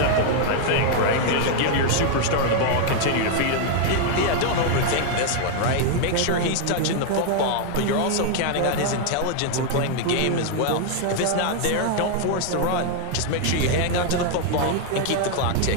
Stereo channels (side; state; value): both; different; correlation 0.01